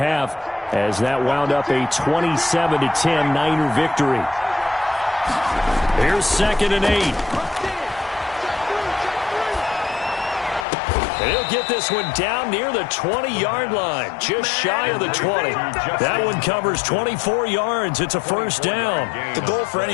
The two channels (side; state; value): right; drops out; at 10.7 s